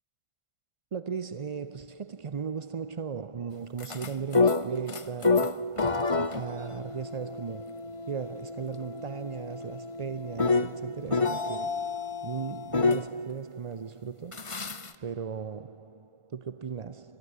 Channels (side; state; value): left; late; 1.5 ms